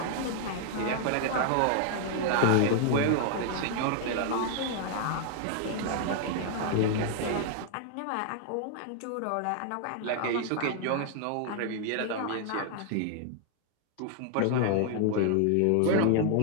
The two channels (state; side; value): different; both; correlation 0.00